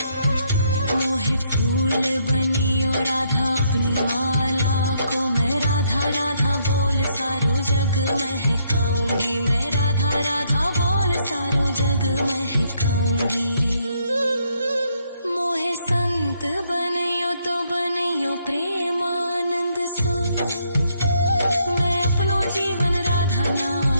मोहे फूल बनियो राधा अपनी माला को, मैं राधा राधा बोल सारो जग महकाऊंगी, मैं राधा राधा बोल सारो जग महकाऊंगी। मोहे संत बनियो तो बनियो प्रेमानंद सो, मैं अपनो जीवन राधा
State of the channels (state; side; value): inverted; both; correlation -0.72